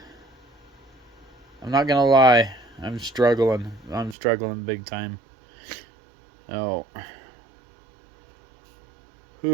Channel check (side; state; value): left; drops out; at 4.2 s